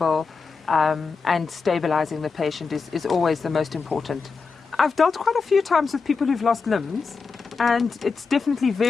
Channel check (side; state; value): right; quieter; 4.9 dB